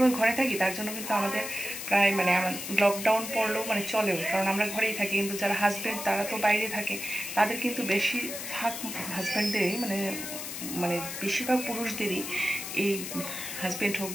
ঘরে থাকি, তার জন্য কিন্তু আমাদের প্রায় মানে আমার লকডাউন পড়লেও মানে চলেও, কারণ আমরা ঘরেই থাকি। কিন্তু যারা হাজব্যান্ড তারা তো বাইরে থাকে, তাদের কিন্তু বেশিরভাগ হাজব্যান্ডেরই মানে মানে বেশিরভাগ পুরুষদেরই এই হাজব্যান্ড হোক,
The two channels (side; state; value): left; noise; hiss, 7 dB below the sound